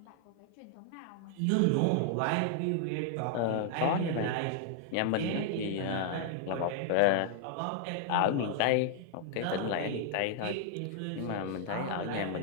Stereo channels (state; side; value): different; both; correlation 0.00